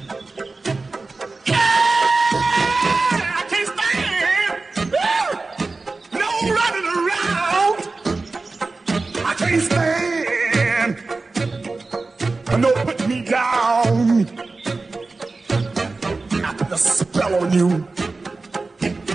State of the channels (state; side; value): quieter; left; 3.7 dB